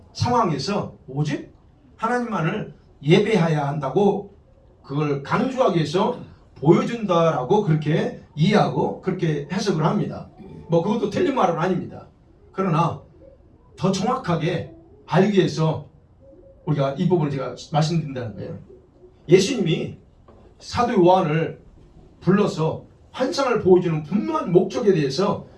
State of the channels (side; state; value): both; identical; correlation 1.00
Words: 상황에서 오직 하나님만을 예배해야 한다고 그걸 강조하기 위해서 보여준다라고 그렇게 이해하고 그렇게 해석을 합니다. 뭐 그것도 틀린 말은 아닙니다. 그러나 더 정확하게 알기 위해서 우리가 이 부분을 제가 말씀드린다는 거예요. 예수님이 사도 요한을 불러서 환상을 보여주는 분명한 목적에 대해서